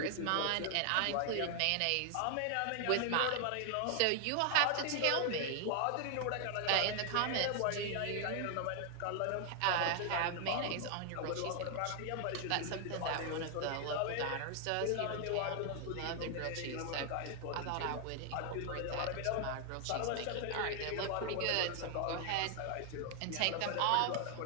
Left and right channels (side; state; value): both; different; correlation 0.00